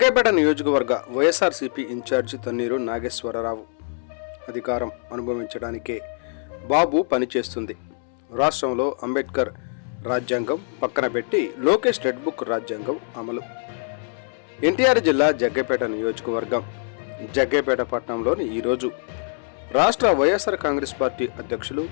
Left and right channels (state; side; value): silent; right; 63 dB below the other